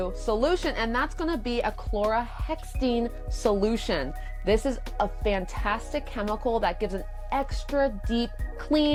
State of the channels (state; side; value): identical; both; correlation 1.00